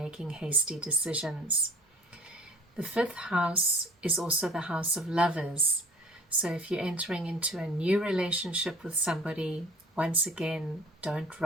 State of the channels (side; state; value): both; normal; correlation 0.49